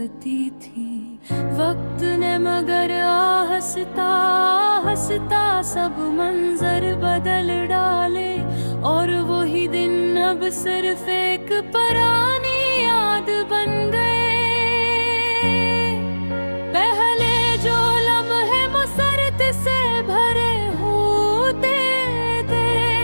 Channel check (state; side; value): inverted; both; correlation -1.00